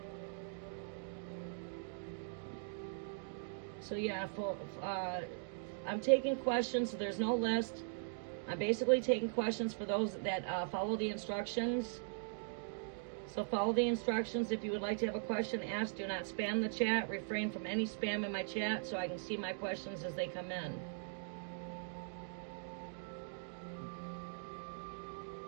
So yeah, I'm taking questions, so there's no list. I'm basically taking questions for those that follow the instructions. So follow the instructions. If you would like to have a question asked, do not spam the chat. Refrain from any spam in my chat so I can see my questions as they come in.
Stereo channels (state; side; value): silent; left; digital silence